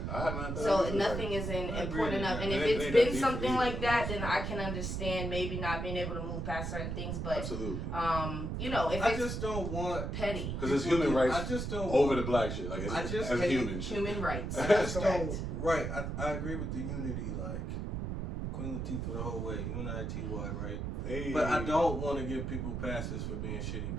I haven't had that. So either. nothing is important enough. And if it it's ain't been that deep something for like you, that, you know, then I can understand maybe not being able to move past certain things. But absolutely. if I it's just don't want petty, Because it's human rights. I just don't over the black shit. Like, it's, I just as hate human shit. human rights. I That's just correct. don't. Right, I agree with the unity. Like Queen Latifah the whole way, UNITY, right? Hey. But I don't want to give people passes for being shitty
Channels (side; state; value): right; noise; rumble, 3 dB below the sound